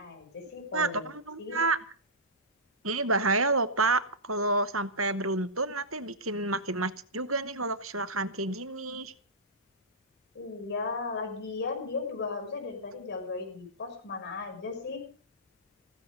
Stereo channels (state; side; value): normal; both; correlation -0.16